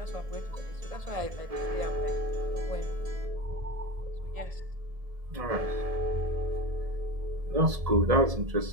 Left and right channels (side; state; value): left; late; 1.7 ms